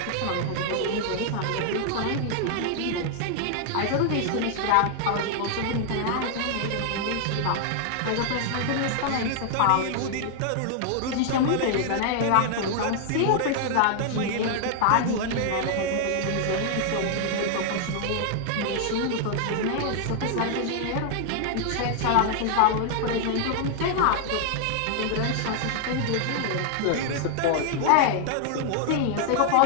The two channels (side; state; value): both; different; correlation 0.00